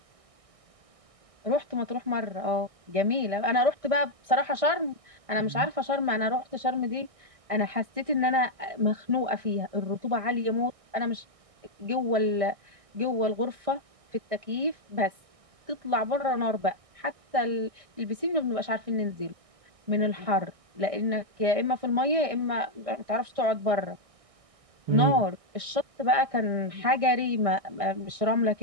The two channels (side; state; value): left; late; 1.6 ms